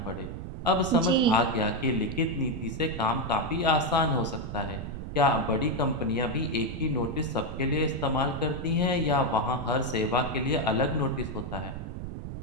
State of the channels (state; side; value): noise; right; rumble, 8 dB below the sound